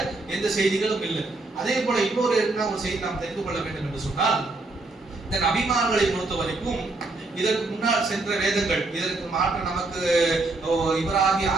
எந்த செய்திகளும் இல்லை. அதே போல இன்னொரு ஒரு செய்தி நாம் தெரிந்து கொள்ள வேண்டும் என்று சொன்னால், இந்த நபிமார்களை பொறுத்த வரைக்கும் இதற்கு முன்னால் சென்ற வேதங்கள், இதற்கு மாற்ற நமக்கு இப்ராஹிம்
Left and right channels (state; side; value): quieter; left; 3.2 dB